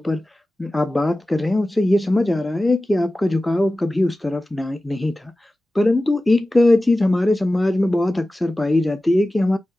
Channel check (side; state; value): both; normal; correlation 0.96